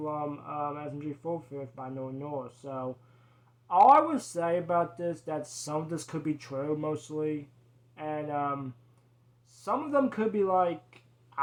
SMG4 Fifth by No North. So all I would say about this, that some of this could be true mostly, and some of them could be like,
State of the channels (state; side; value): identical; both; correlation 1.00